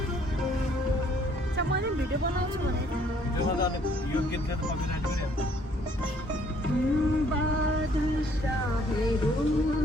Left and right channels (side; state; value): both; normal; correlation 0.63